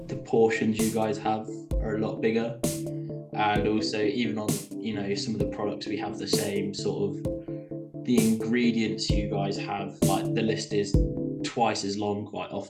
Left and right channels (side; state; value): both; identical; correlation 1.00